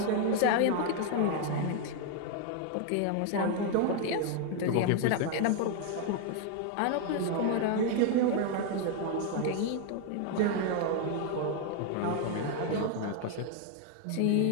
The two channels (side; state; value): both; different; correlation 0.00